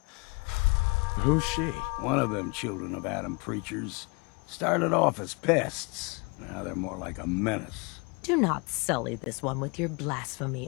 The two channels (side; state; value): right; quieter; 30.2 dB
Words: Who's she? One of them children of Adam preachers. Started off as pests. Now they're more like a menace. Do not sully this one with your